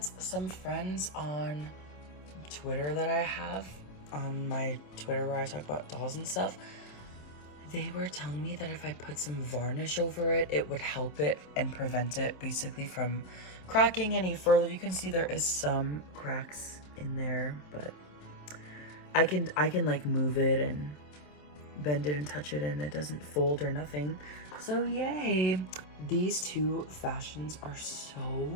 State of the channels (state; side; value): late; right; 27 ms